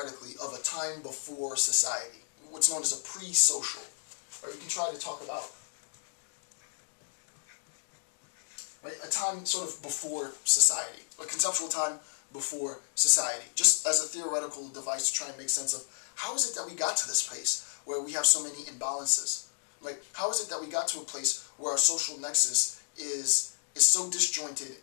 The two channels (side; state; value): right; silent; digital silence